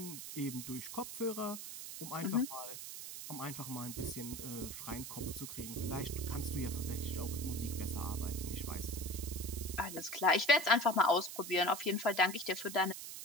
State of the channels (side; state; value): right; noise; hiss, 8 dB below the sound